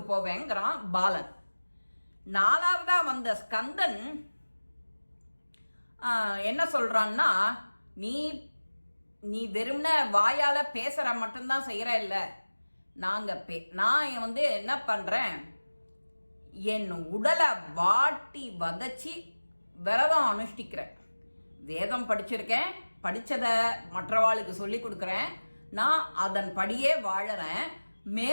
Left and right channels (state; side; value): inverted; both; correlation -1.00